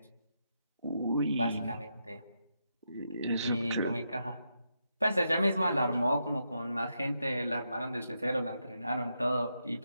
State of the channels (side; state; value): both; inverted; correlation -0.83